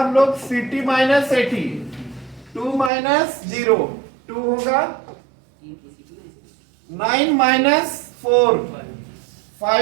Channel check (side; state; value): left; drops out; at 2.9 s